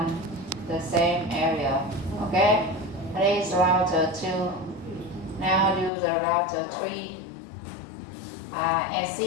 the same area. Okay, this is router 2. Now do the router 3.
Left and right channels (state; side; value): drops out; right; at 5.9 s